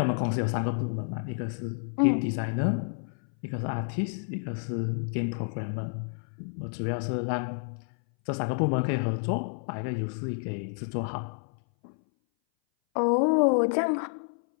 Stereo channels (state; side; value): silent; right; 58 dB below the other